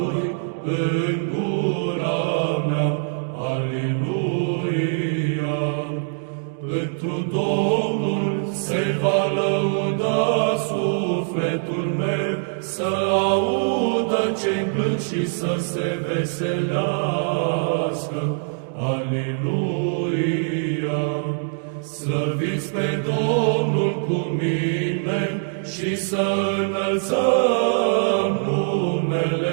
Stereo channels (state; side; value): silent; left; digital silence